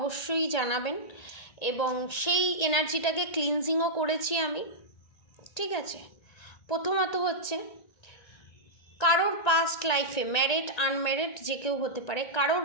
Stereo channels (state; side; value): late; right; 1.9 ms